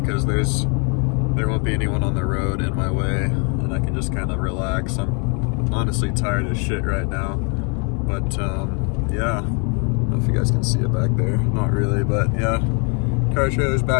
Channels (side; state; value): right; quieter; 36.1 dB